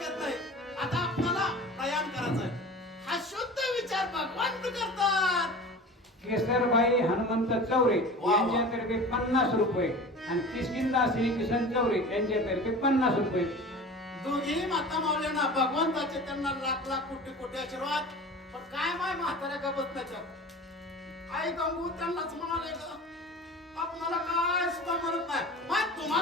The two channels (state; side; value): normal; both; correlation 0.37